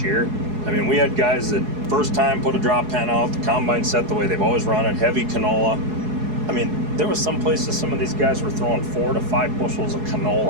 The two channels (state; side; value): late; left; 4.7 ms